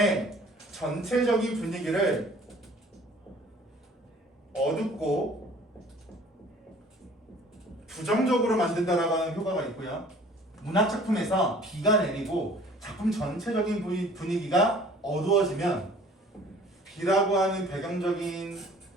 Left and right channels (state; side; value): normal; both; correlation 0.52